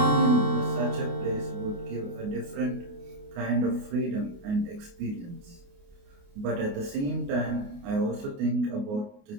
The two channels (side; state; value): left; late; 28 ms